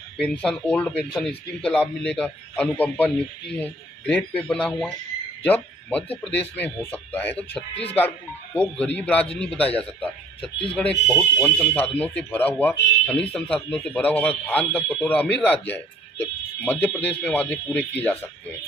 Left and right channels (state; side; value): normal; both; correlation 0.55